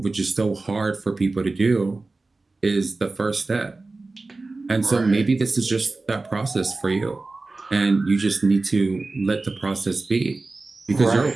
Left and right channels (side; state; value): left; quieter; 3.4 dB